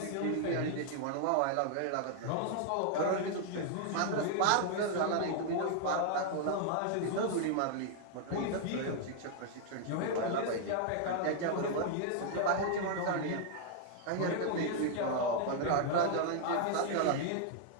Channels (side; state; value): both; different; correlation 0.00